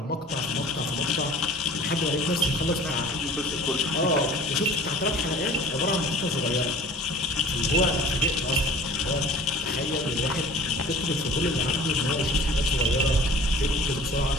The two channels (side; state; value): both; normal; correlation 0.46